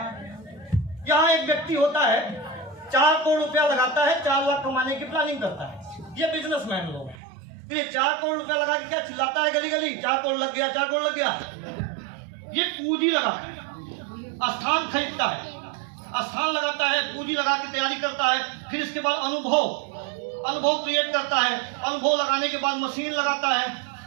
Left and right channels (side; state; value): left; drops out; at 7.2 s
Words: यहाँ एक व्यक्ति होता है 4 करोड़ रुपया लगाता है, 4 लाख कमाने की प्लानिंग करता है। ये बिजनेसमैन लोग हैं। तो ये 4 करोड़ रुपया लगा के क्या चिल्लाता है गली गली, 4 करोड़ लग गया, 4 करोड़ लग गया। ये पूंजी लगाता है, स्थान खरीदता है, स्थान लगाता है, पूंजी लगा के तैयारी करता है। फिर इसके बाद अनुभव क्रिएट करता है। अनुभव लगाने के बाद मशीन लगाता है,